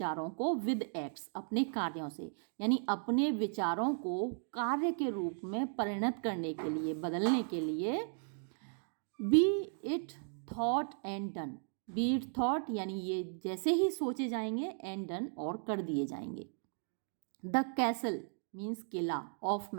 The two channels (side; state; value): left; silent; 54 dB below the other